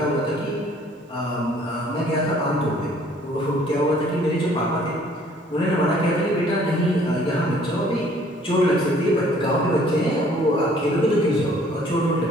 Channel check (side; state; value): both; normal; correlation 0.58